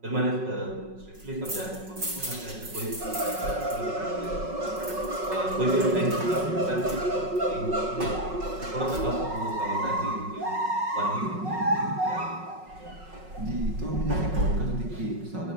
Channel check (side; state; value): left; late; 5.4 ms